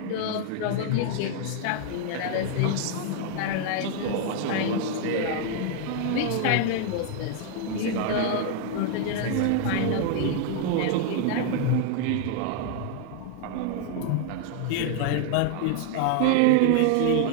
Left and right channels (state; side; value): different; both; correlation 0.00